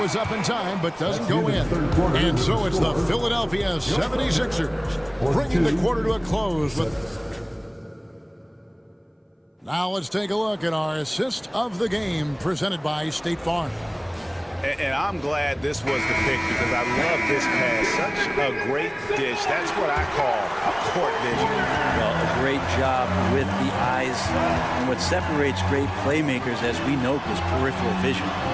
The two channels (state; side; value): identical; both; correlation 1.00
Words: up in time, but doesn't go in. And so it's the Philadelphia 76ers bringing the quarter to a close. Now let's take a look at our assist of the game presented by State Farm. And I'm glad this was the pick because I love this pass. Such a great dish. That's what I call a court vision. Well, a great job with the eyes. And what separates great playmakers, as we note, is peripheral vision.